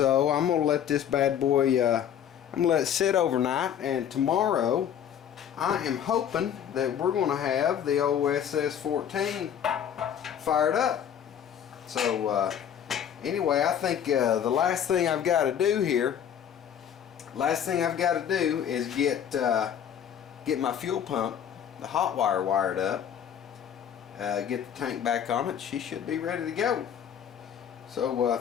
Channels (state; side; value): quieter; right; 9.1 dB